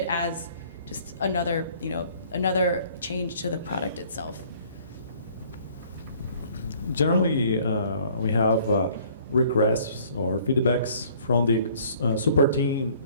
as just another change to the product itself. Generally, we have requests or feedbacks from the support team,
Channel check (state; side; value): inverted; both; correlation -0.56